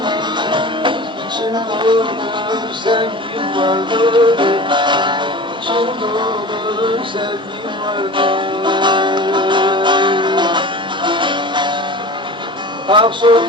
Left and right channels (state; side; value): normal; both; correlation 0.36